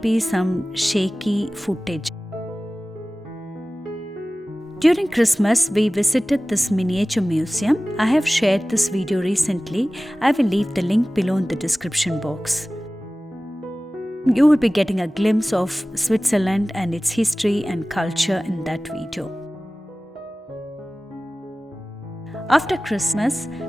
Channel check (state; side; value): normal; both; correlation 0.97